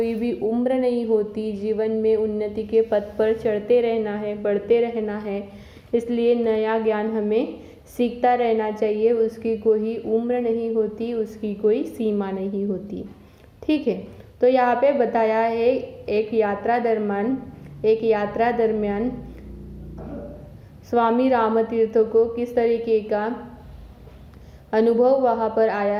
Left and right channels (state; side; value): identical; both; correlation 1.00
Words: भी उम्र नहीं होती। जीवन में उन्नति के पथ पर चढ़ते रहना है, बढ़ते रहना है, इसलिए नया ज्ञान हमें सीखता रहना चाहिए। उसकी कोई उम्र नहीं होती, उसकी कोई सीमा नहीं होती। ठीक है, तो यहाँ पे बताया है एक यात्रा दरमियान स्वामी रामतीर्थ को किस तरीके का अनुभव वहाँ पर आया